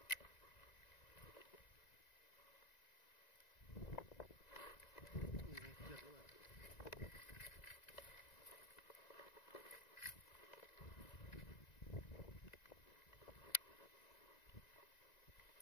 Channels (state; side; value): late; right; 1.9 ms